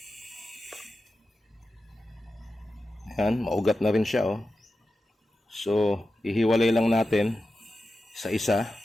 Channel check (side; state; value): both; normal; correlation 0.92